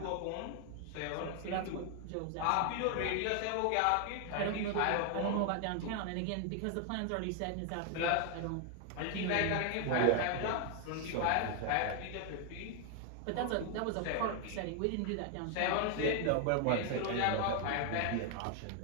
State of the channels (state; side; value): different; both; correlation 0.00